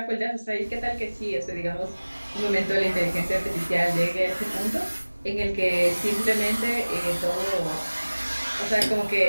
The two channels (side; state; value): both; inverted; correlation -1.00